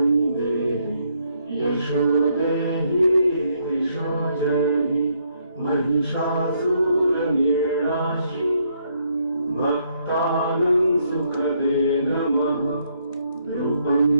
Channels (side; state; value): both; inverted; correlation -0.72